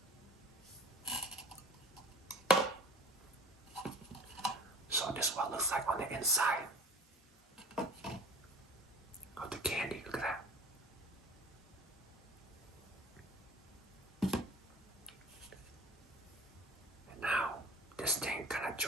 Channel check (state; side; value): normal; both; correlation 0.44